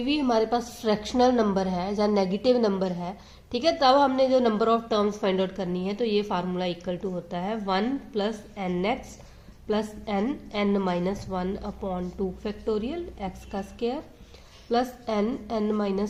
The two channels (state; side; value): identical; both; correlation 1.00